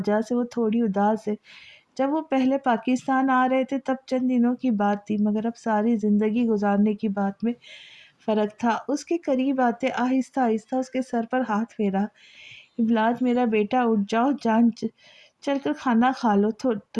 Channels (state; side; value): identical; both; correlation 1.00